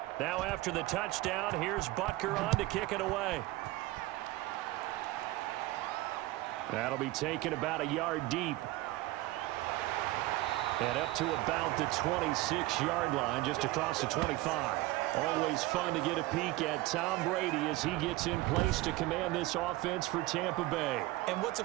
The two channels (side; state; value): left; quieter; 18.6 dB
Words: Now after the touchdown, here's Butker on to kick it away. That'll be taken about a yard deep. And up to about the 26-yard line, just across the 25. Always fun to get a peek at Tom Brady as he gets in place to command this offense for Tampa Bay. And what's a